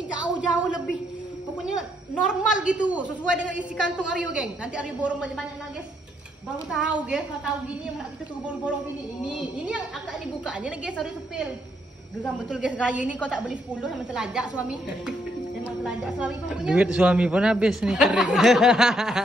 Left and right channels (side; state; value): both; normal; correlation 0.74